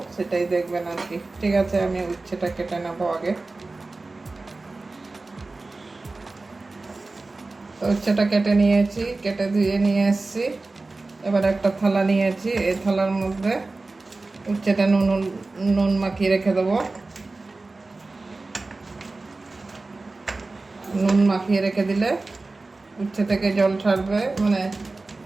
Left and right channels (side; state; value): left; quieter; 3.4 dB